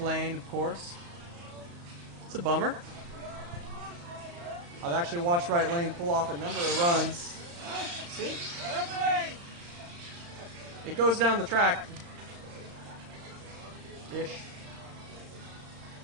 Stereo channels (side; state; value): left; late; 35 ms